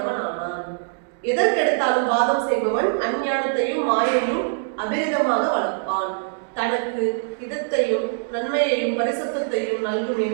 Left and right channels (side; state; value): left; silent; digital silence